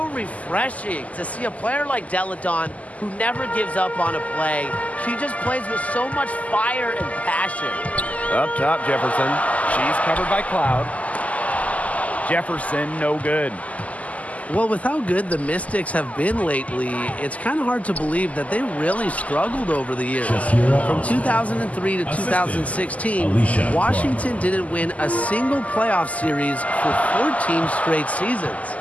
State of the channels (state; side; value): late; right; 0.072 ms